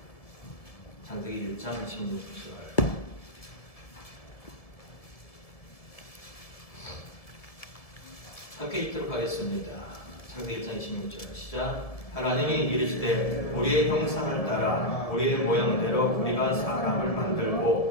창세기 1장 26절. 함께 읽도록 하겠습니다. 창세기 1장 26절 시작. 하나님이 이르시되 우리의 형상을 따라 우리의 모양대로 우리가 사람을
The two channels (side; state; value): right; late; 1.7 ms